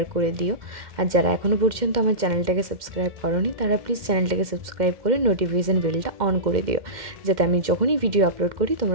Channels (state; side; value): late; left; 2.1 ms